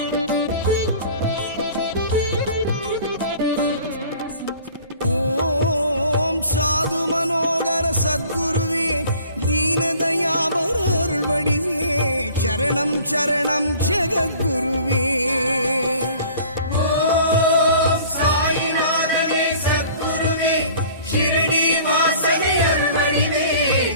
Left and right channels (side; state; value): both; inverted; correlation -0.48